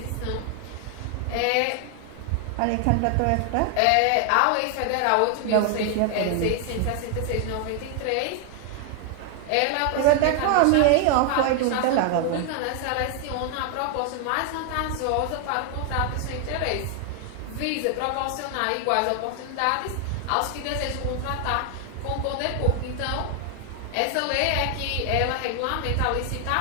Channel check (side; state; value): both; different; correlation 0.00